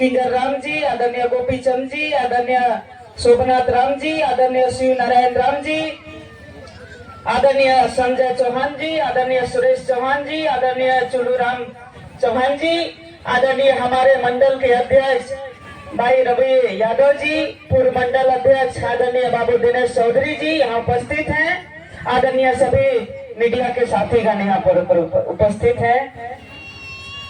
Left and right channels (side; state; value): both; identical; correlation 1.00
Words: राम जी, आदरणीय गोपीचंद जी, आदरणीय शोभनाथ राम जी, आदरणीय शिव नारायण राम जी, आदरणीय संजय चौहान जी, आदरणीय सुरेश चौहान जी, आदरणीय चुलू राम चौहान जी, आदरणीय हमारे मंडल के अध्यक्ष भाई रवि यादव जी, पूर्व मंडल अध्यक्ष आदरणीय बाबू दिनेश चौधरी जी यहाँ उपस्थित हैं, आदरणीय सभी मीडिया के साथीगण यहाँ पर उपस्थित हैं।